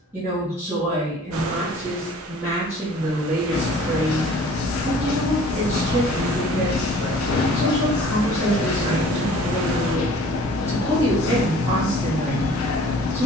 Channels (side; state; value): both; normal; correlation 0.50